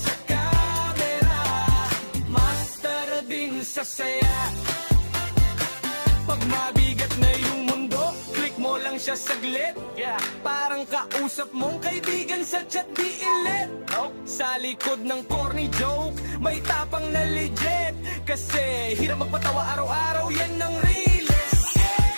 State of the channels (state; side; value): inverted; both; correlation -1.00